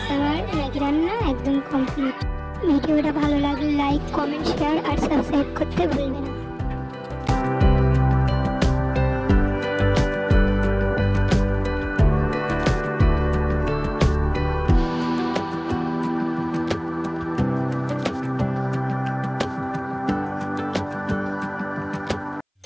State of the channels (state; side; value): identical; both; correlation 1.00